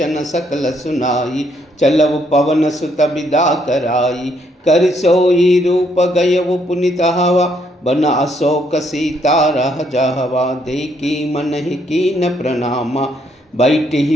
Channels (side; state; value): both; normal; correlation 0.71